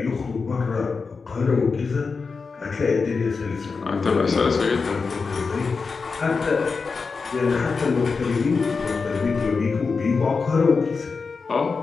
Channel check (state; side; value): quieter; right; 4.7 dB